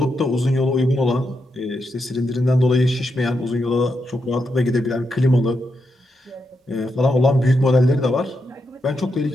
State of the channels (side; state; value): both; normal; correlation 0.84